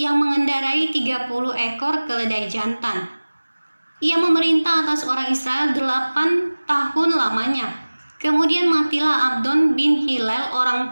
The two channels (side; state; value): both; inverted; correlation -1.00